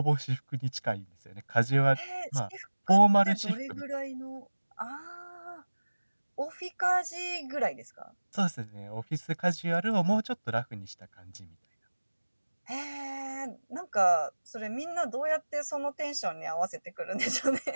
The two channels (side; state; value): both; inverted; correlation -1.00